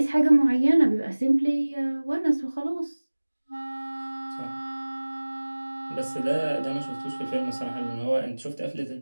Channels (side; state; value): both; inverted; correlation -1.00